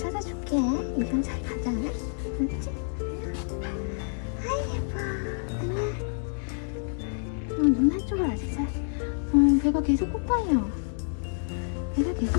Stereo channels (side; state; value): right; silent; 59 dB below the other